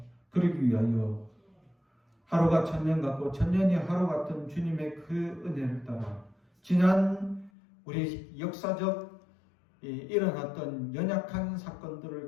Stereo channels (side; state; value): right; drops out; at 7.5 s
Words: 그러기 위하여 하루가 천년 같고 천년이 하루 같은 주님의 그 은혜를 따라 지난 우리 역사적 일어났던 연약한